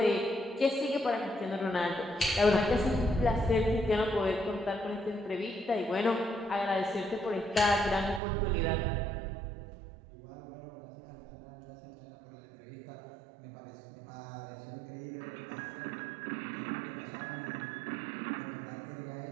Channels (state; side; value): drops out; left; at 8.2 s